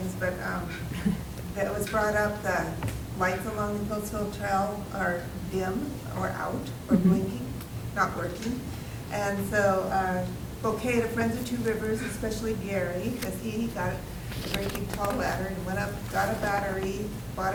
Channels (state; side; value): identical; both; correlation 1.00